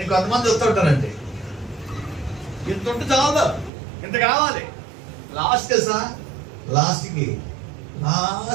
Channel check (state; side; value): drops out; left; at 3.7 s